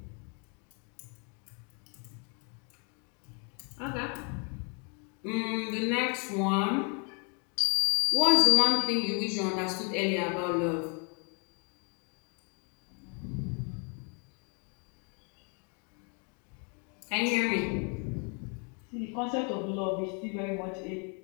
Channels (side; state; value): right; quieter; 37.2 dB